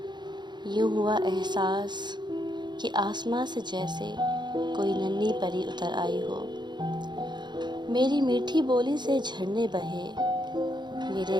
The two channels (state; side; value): late; left; 0.21 ms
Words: یوں ہوا احساس کہ آسماں سے جیسے کوئی ننھی پری اتر آئی ہو۔ میری میٹھی بولی سے جھرنے بہے،